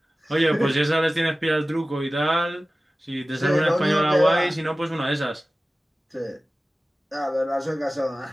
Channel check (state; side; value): normal; both; correlation 0.96